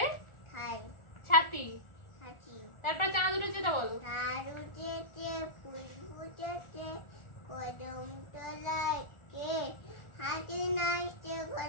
খাই ছাতি। হাঁচি তারপর চাঁদ উঠেছে তা বলো। তার উঠেছে ফুল ফুটেছে কদম তলায় কে হাতে নাচছে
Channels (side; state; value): right; late; 1.4 ms